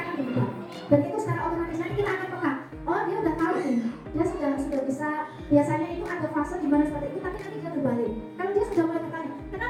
berubah. Dan itu secara otomatis nanti kita akan peka. Oh, dia udah tahu nih, dia sudah bisa. Biasanya itu ada fase di mana seperti itu, tapi nanti dia berbalik. Kalau dia sudah mulai bertanya,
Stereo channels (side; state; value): both; identical; correlation 1.00